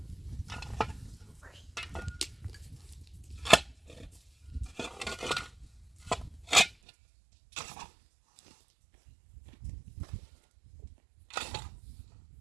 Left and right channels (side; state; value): left; drops out; at 6.8 s